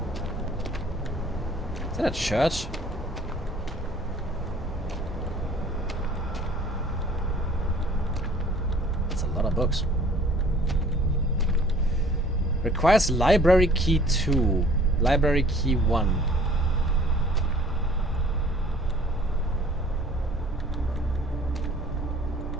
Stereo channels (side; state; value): both; normal; correlation 0.53